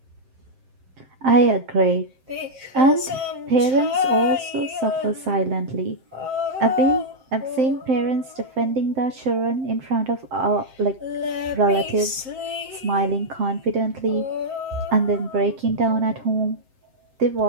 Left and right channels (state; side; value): late; left; 7.7 ms